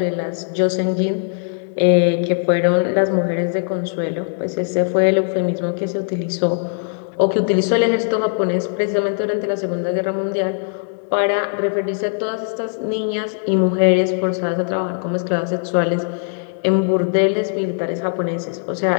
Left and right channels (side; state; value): right; silent; digital silence